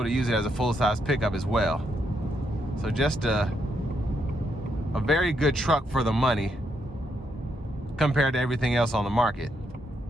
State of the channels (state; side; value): normal; both; correlation 0.78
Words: to use it as a full-size pickup as well. So just a very good truck for the money compared to everything else on the market.